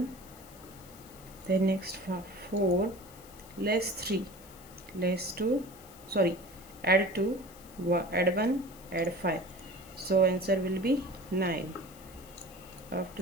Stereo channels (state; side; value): noise; left; hiss, 21 dB below the sound